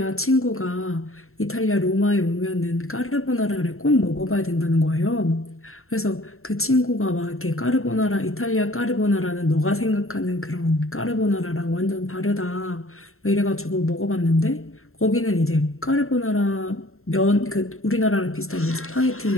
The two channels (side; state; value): right; late; 0.62 ms